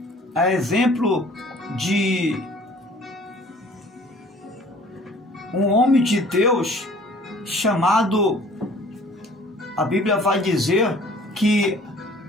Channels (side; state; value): both; normal; correlation 0.52